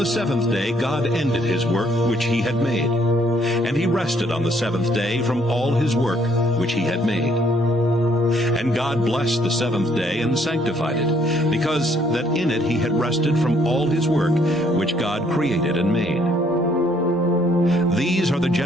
seventh day God ended his work which he had made. And he rested on the seventh day from all his work which he had made. And God blessed the seventh day and sanctified it, because that in it he had rested from all his work which God created and made. These are the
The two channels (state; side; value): normal; both; correlation 0.66